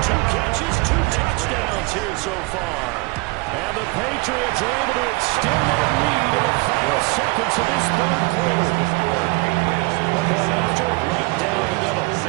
2 catches, 2 touchdowns here so far. And the Patriots are able to extend their lead in the final seconds of this third quarter. Point after, right down the middle.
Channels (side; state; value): left; quieter; 25.9 dB